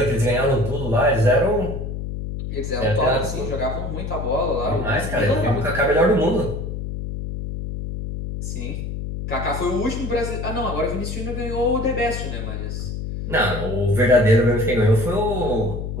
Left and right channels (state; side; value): noise; left; hum, 5 dB below the sound